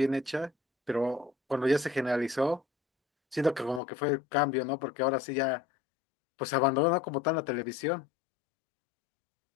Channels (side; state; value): right; drops out; at 3.8 s